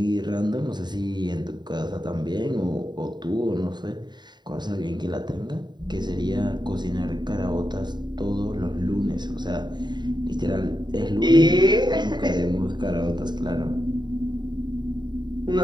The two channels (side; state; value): left; late; 0.21 ms